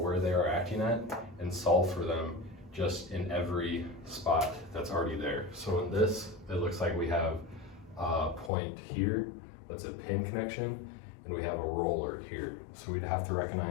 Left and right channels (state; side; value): drops out; right; at 8.5 s